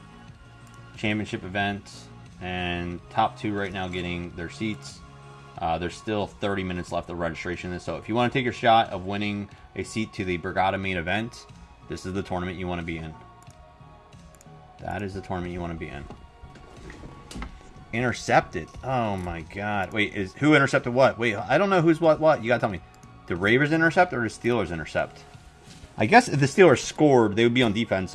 championship event, and top 2 right now getting their seats. There's still 30 minutes left of registration. So if you want to take your shot of winning a seat to the Brigada main event, this is the tournament you want to be in. That is the tournament you want to be in. Intercepted. Oh my god. Wait, who intercepted what? Wait, I don't know who's what. You gotta tell me. The Ravens intercept or the Steelers intercept? I guess if the Steelers scored, they would be on defense.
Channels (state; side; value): identical; both; correlation 1.00